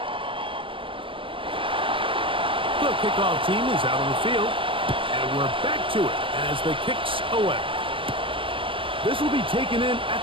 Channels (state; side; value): late; left; 0.25 ms